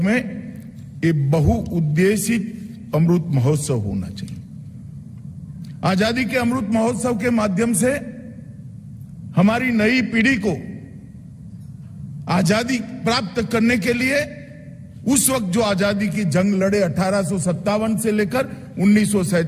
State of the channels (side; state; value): both; identical; correlation 1.00